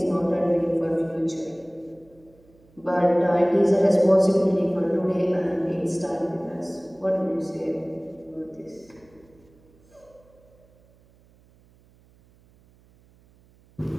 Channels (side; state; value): right; noise; hum, 30 dB below the sound